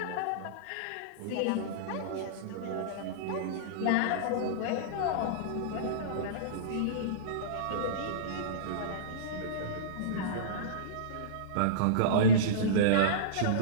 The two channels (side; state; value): both; different; correlation -0.05